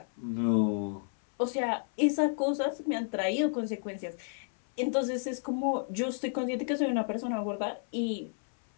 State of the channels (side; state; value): right; silent; 57 dB below the other